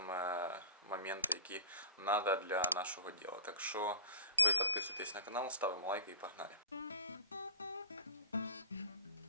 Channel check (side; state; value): both; inverted; correlation -0.40